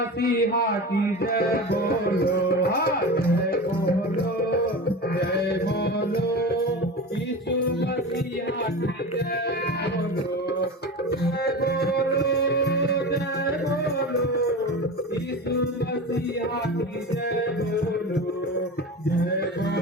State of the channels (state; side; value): normal; both; correlation 0.29